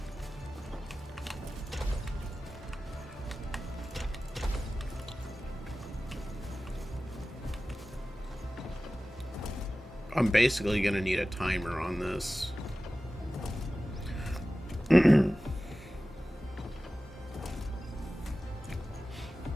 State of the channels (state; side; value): normal; both; correlation 0.96